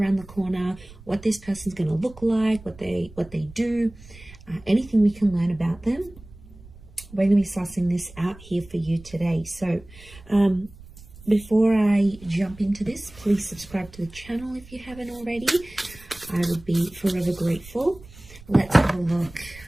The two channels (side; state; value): right; noise; rumble, 20 dB below the sound